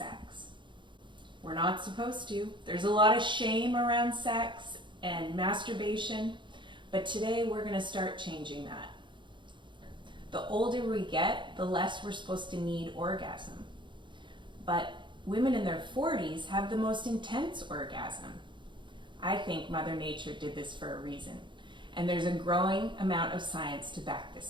We're not supposed to. There's a lot of shame around sex and masturbation, but today we're going to start changing that. The older we get, the less we're supposed to need orgasm. But women in their 40s have the most intense orgasm. I think Mother Nature did this for a reason, and there's a growing amount of science to back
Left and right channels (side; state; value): left; late; 0.23 ms